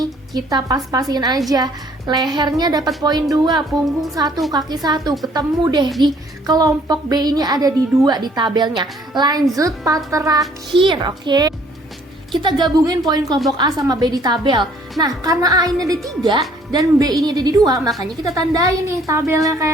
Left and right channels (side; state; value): both; normal; correlation 0.60